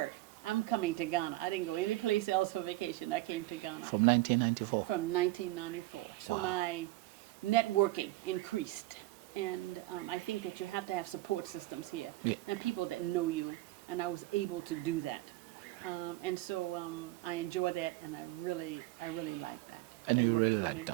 I'm coming to Ghana. I didn't go any place else for vacation, I came to Ghana. From 1994? From 1994. So my networking increased. And I think that you have to have support systems here and people that know you, and I was able to do that. And so I enjoy that, and I really like that. And That you worked really for like me.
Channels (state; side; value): quieter; left; 18.5 dB